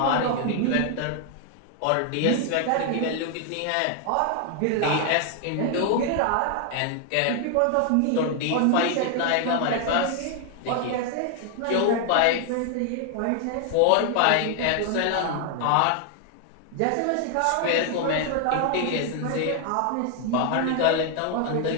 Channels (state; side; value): different; both; correlation 0.00